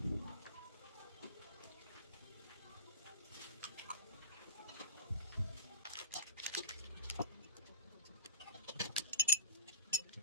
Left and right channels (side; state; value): both; inverted; correlation -0.37